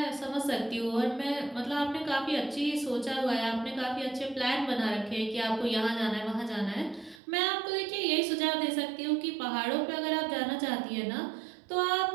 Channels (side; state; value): left; drops out; at 7.2 s